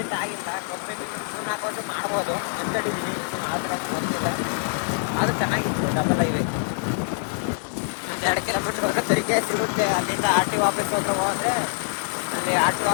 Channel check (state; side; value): silent; right; 58 dB below the other